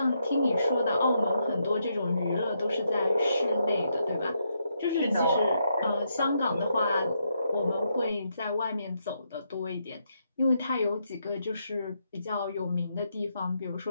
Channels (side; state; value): both; inverted; correlation -0.79